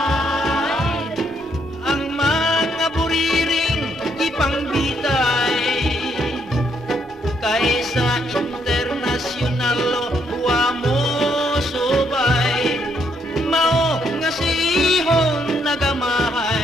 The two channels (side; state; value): both; normal; correlation 0.73